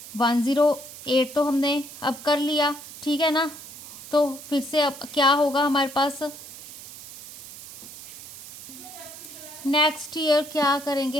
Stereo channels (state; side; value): noise; right; hiss, 14 dB below the sound